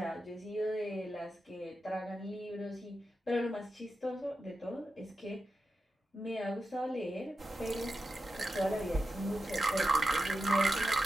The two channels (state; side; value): normal; both; correlation 0.90